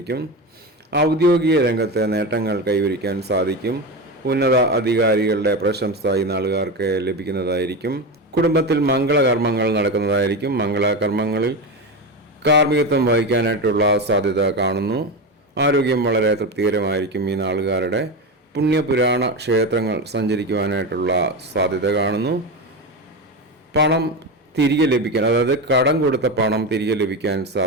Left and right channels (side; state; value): both; normal; correlation 0.19